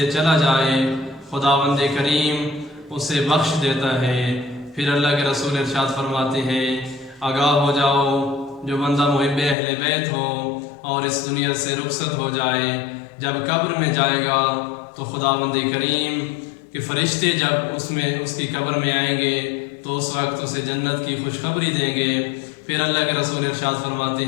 چلا جائے خداوند کریم اسے بخش دیتا ہے۔ پھر اللہ کے رسول ارشاد فرماتے ہیں آگاہ ہو جاؤ جو بندہ محب اہل بیت ہو اور اس دنیا سے رخصت ہو جائے جب قبر میں جائے گا تو خداوند کریم کہ فرشتے جب اس کی قبر میں آئیں گے تو اس وقت اسے جنت کی خوشخبری دیں گے۔ پھر اللہ کے رسول ارشاد فرماتے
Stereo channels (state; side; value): drops out; right; at 9.6 s